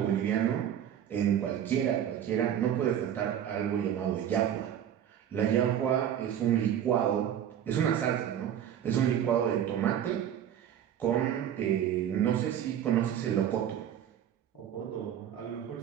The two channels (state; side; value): quieter; left; 9.9 dB